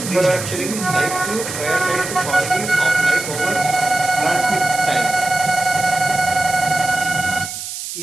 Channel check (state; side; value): noise; right; hiss, 8 dB below the sound